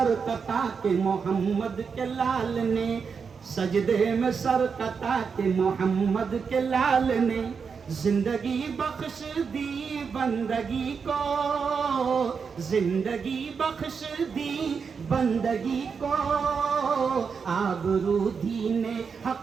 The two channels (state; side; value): quieter; left; 5.8 dB